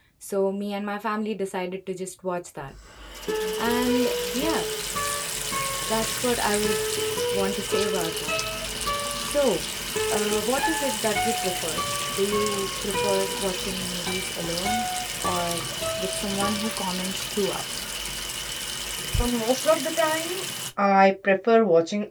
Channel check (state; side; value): identical; both; correlation 1.00